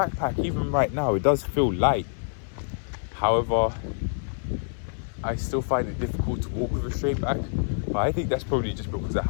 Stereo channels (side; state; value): right; silent; digital silence